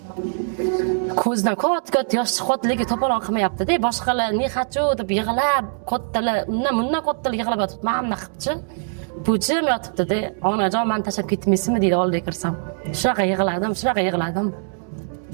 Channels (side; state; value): left; silent; digital silence